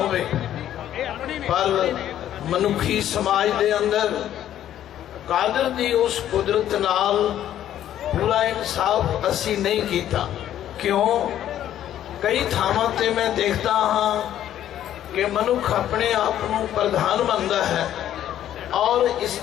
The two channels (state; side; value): quieter; right; 11.5 dB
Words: पर मनुखी समाज दे अंदर कादर दी उस कुदरत नाल पूरा इंसाफ असी नहीं कीता। क्यों? कई थावां ते मैं देखता हाँ कि मनुख अपने आप को प्रधान मानता है और